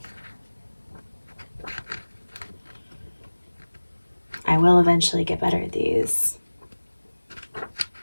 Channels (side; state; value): both; inverted; correlation -1.00